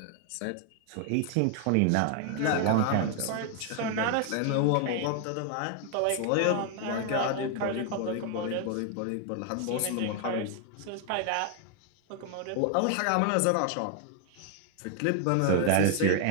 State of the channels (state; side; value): different; both; correlation 0.00